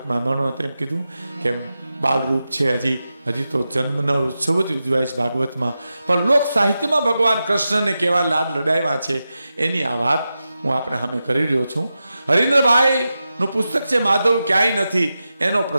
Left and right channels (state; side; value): inverted; both; correlation -0.91